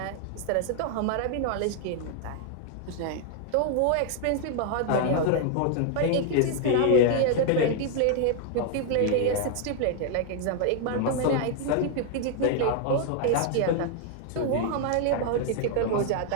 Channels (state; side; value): different; both; correlation 0.00